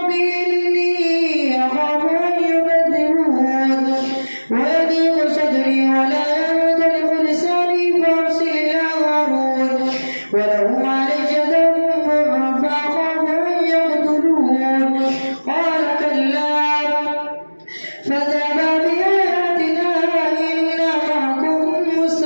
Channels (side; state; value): both; inverted; correlation -1.00